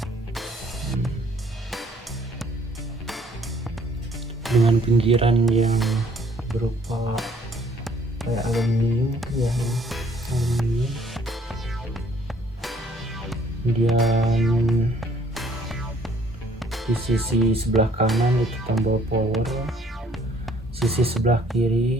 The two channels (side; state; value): both; normal; correlation 0.61